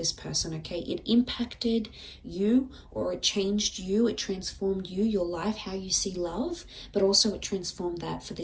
person, okay? It impacted you, or it changed you, it transformed you, your life, how you see love, but also it transformed that for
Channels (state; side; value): identical; both; correlation 1.00